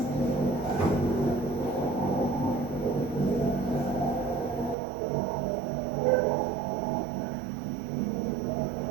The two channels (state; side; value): drops out; left; at 4.8 s